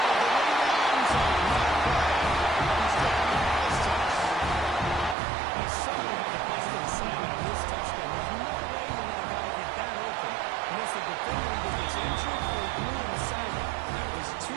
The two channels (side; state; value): left; drops out; at 5.2 s